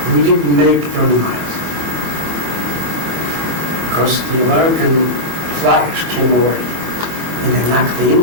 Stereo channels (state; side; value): late; left; 24 ms